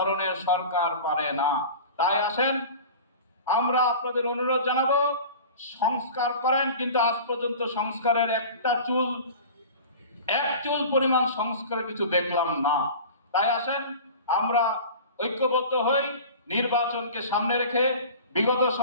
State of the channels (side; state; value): both; inverted; correlation -0.38